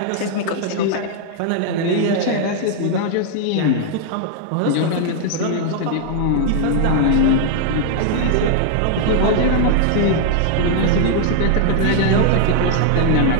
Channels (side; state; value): both; different; correlation 0.00